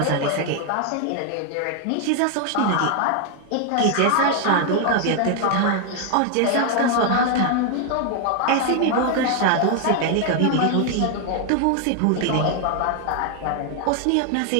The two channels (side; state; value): both; different; correlation 0.00